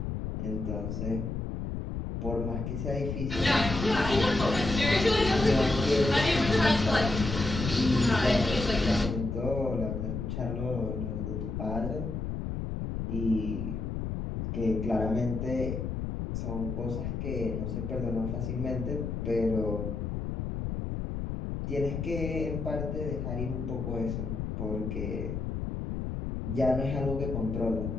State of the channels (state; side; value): noise; left; rumble, 3 dB below the sound